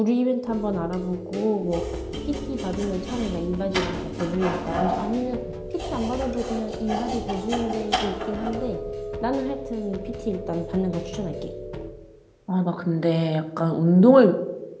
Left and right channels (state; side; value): identical; both; correlation 1.00